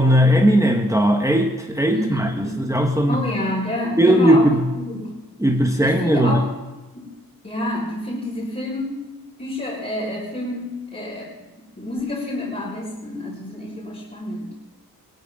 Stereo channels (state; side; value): normal; both; correlation 0.71